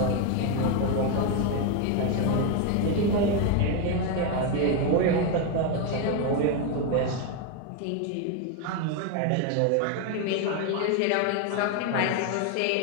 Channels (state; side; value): different; both; correlation 0.01